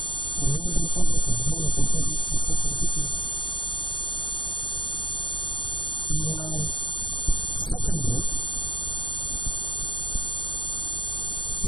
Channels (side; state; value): right; late; 0.23 ms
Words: remembering everything when he does not have access to the documents? And secondly,